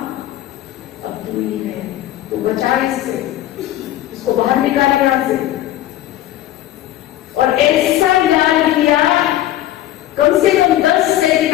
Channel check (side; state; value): right; quieter; 13.8 dB